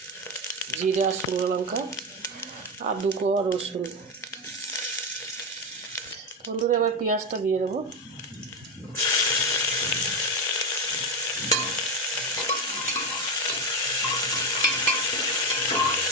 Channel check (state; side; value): normal; both; correlation 0.13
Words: জিরা, শুকনো লঙ্কা আর 2 কোয়া রসুন। বন্ধুরা এবার পেঁয়াজটা দিয়ে দেবো।